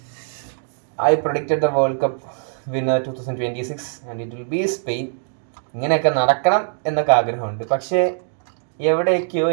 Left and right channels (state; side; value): silent; left; 65 dB below the other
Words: I predicted the World Cup winner 2026 and it will be Spain. ഇങ്ങനെയൊക്കെ നടക്കണം എന്നൊക്കെ ആഗ്രഹമുണ്ട്. പക്ഷേ എവിടെയൊക്കെയോ